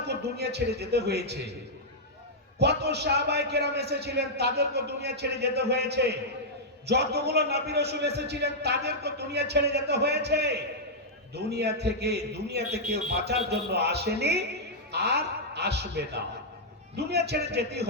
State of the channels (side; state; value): both; normal; correlation -0.07